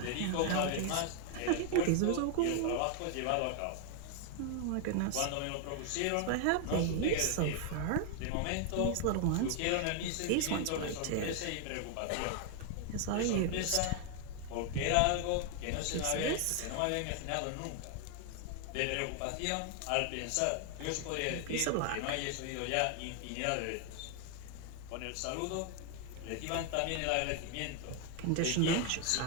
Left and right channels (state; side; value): different; both; correlation 0.00